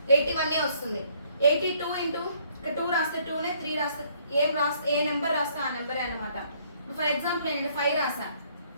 81 వస్తుంది. 82 ఇక్కడ 2 రాస్తే 2నే, 3 రాస్తే ఏ నెంబర్ రాస్తే ఆ నెంబరే అనమాట. ఫర్ ఎగ్జాంపుల్ నేను ఇక్కడ 5 రాసా,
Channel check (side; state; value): both; inverted; correlation -0.64